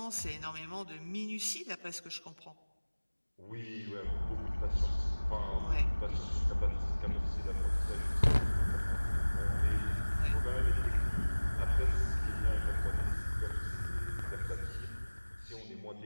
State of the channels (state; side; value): inverted; both; correlation -1.00